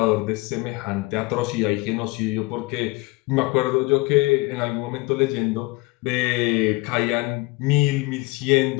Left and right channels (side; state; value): right; quieter; 23.2 dB